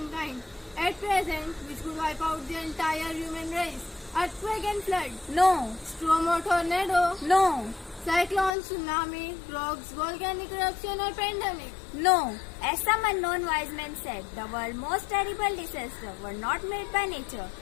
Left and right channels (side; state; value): right; drops out; at 8.6 s